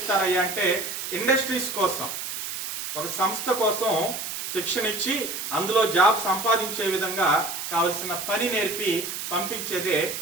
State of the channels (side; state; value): right; noise; hiss, 5 dB below the sound